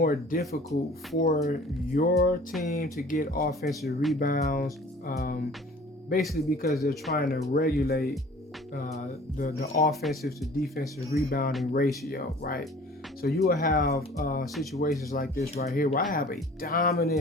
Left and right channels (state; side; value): normal; both; correlation 0.48